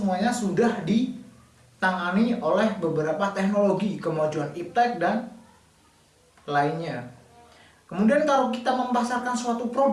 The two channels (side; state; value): both; identical; correlation 1.00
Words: sudah ditangani oleh beberapa teknologi, kemajuan iptek dan lainnya. Kemudian kalau kita memasarkan suatu